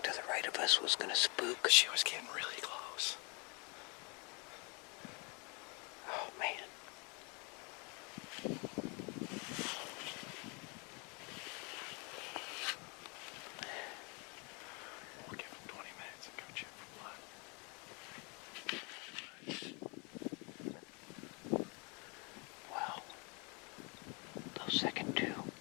to the right of us was going to spook. She was getting really close. Oh, man. We'll give him 20 minutes and go check for blood. Well, those second two,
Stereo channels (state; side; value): quieter; right; 32.2 dB